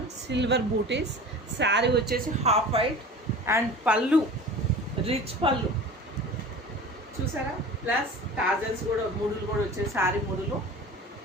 సిల్వర్ బూటీస్. శారీ వచ్చేసి హాఫ్ వైట్ అండ్ పళ్ళు రిచ్ పళ్ళు చూసారా. ప్లస్ టాజల్స్ కూడా, ముడులు కూడా వచ్చే శారీ ముడులు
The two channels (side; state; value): both; normal; correlation 0.38